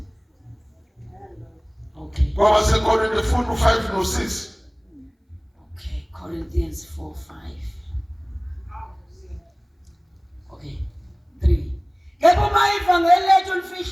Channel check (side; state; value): both; identical; correlation 1.00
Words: Okay. Ngoba seKorinte funda 5 no 6. Okay, Corinthians 4:5. Okay. 3. Kepha ivangeli lethu